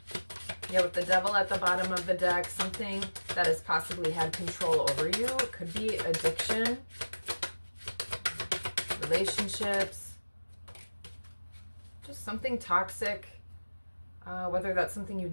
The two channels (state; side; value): inverted; both; correlation -1.00